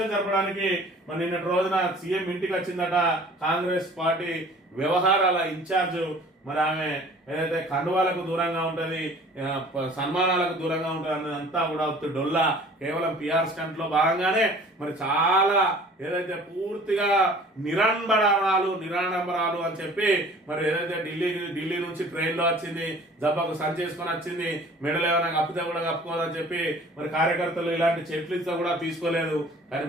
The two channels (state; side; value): normal; both; correlation 0.49